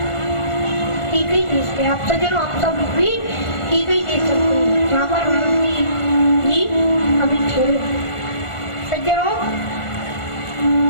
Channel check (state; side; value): late; right; 1.4 ms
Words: ठीक ही देश पे। आप सज्जनों, आप सब भी ठीक ही देख सकते हैं जहाँ पर भरत जी अभी ठहरे। सज्जनों